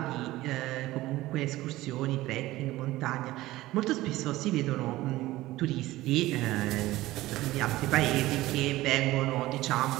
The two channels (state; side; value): quieter; left; 17.2 dB